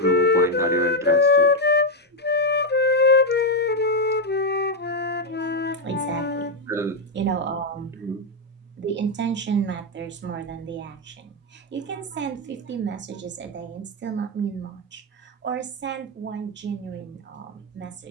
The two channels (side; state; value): both; normal; correlation 0.02